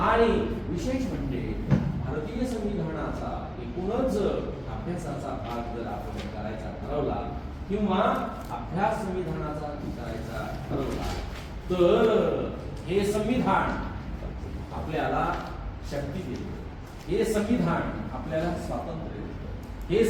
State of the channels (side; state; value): both; identical; correlation 1.00